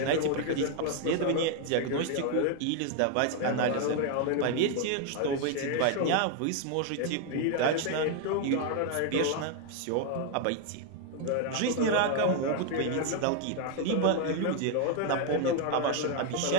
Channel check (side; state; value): both; different; correlation 0.00